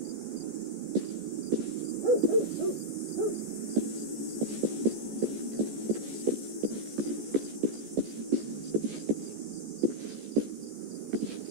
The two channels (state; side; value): late; left; 14 ms